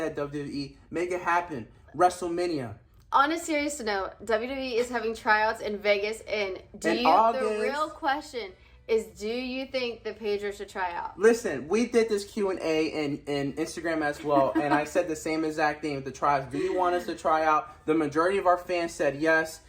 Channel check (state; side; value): identical; both; correlation 1.00